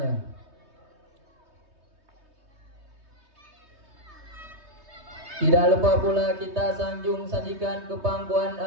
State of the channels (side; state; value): left; late; 3.2 ms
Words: Tidak lupa pula kita sanjung sajikan kepangkuan